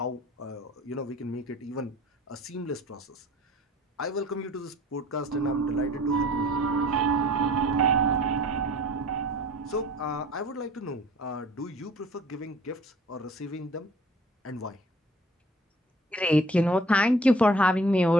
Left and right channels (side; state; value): both; normal; correlation 0.51